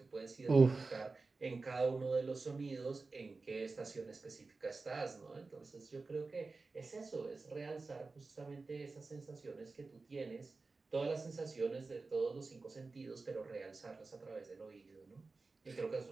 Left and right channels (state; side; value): quieter; left; 3.8 dB